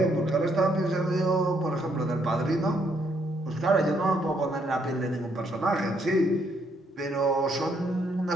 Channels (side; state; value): both; normal; correlation 0.72